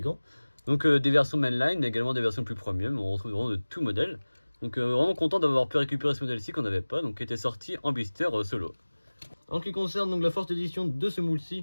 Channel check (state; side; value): inverted; both; correlation -1.00